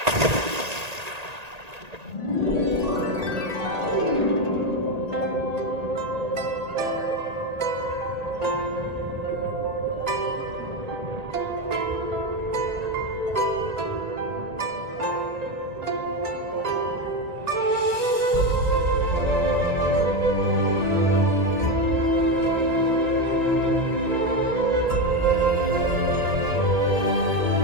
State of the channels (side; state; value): left; late; 1.8 ms